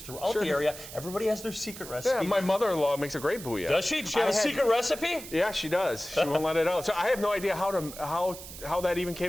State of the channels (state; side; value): noise; right; hiss, 13 dB below the sound